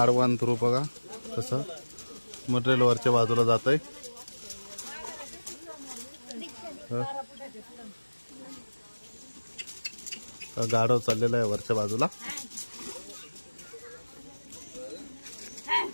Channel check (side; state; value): both; inverted; correlation -1.00